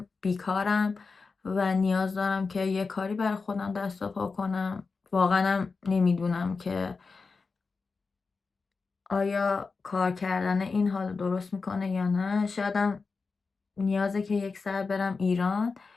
بیکارم و نیاز دارم که یه کاری برای خودم دست و پا کنم. واقعا نمیدونم که آیا کار کردن این حال درست میکنه یا نه. شایدم نیازه که یک ساعت برم ایران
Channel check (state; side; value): quieter; right; 4.5 dB